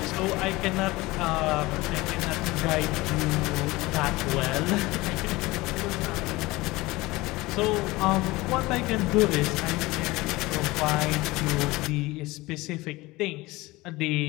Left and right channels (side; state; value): right; quieter; 20.7 dB